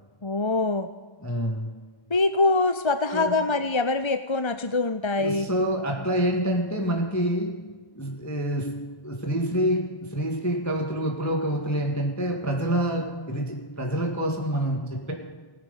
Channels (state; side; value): late; right; 1.3 ms